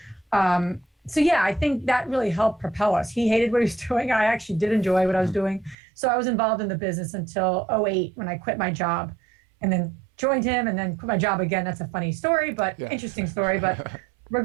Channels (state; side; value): drops out; left; at 5.8 s